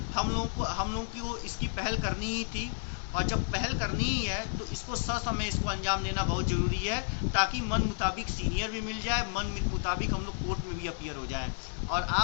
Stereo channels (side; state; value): right; silent; digital silence